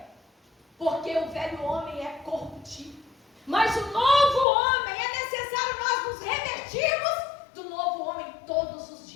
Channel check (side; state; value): right; drops out; at 4.5 s